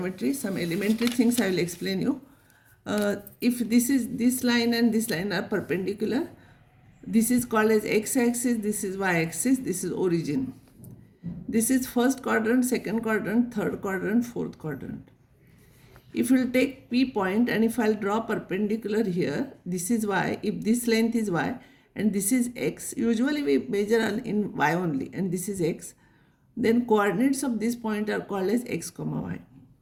Some elementary things I will explain you. If this line and this line are perpendicular, this is called as x-axis, this is y-axis, this is origin. This is first quadrant, second quadrant, third quadrant, fourth quadrant. If you will take P point and if I'll draw perpendicular here, this is y, if this length is y and this is x, usually we measure in y only and this is x, then coordinates of this point are called as x comma y.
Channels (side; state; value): both; identical; correlation 1.00